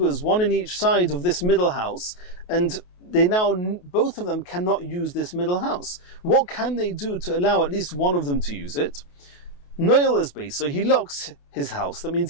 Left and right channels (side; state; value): right; late; 28 ms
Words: one in each side of this middle house, and both of them cannot use this middle house. What can they do to allow at least one of them to use it? Noel is based, so he locks his house. That